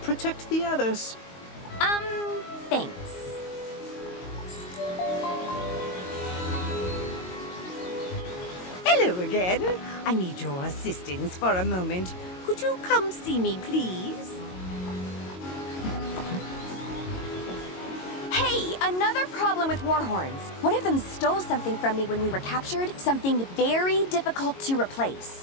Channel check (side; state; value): right; late; 22 ms